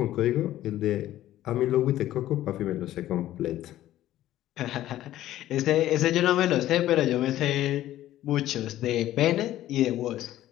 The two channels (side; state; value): right; quieter; 13.8 dB